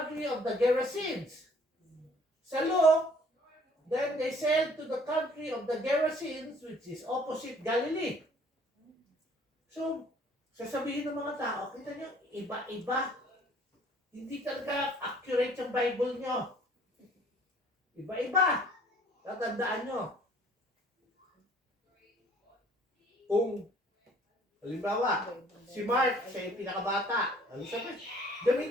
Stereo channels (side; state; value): both; normal; correlation 0.57